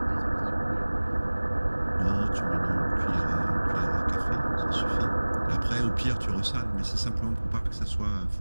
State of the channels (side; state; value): both; inverted; correlation -1.00